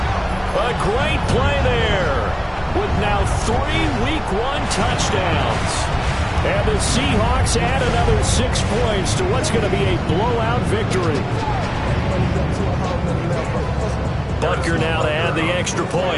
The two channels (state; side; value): identical; both; correlation 1.00